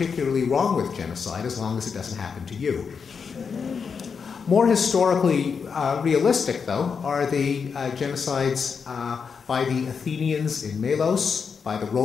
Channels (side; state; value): right; quieter; 6.0 dB